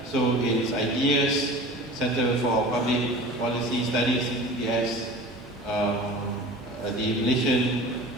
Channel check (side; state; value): both; normal; correlation 0.39